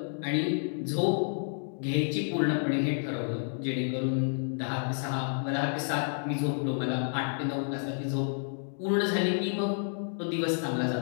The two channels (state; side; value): silent; right; digital silence